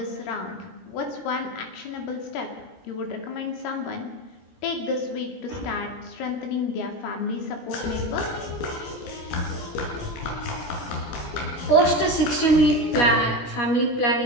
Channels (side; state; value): right; late; 17 ms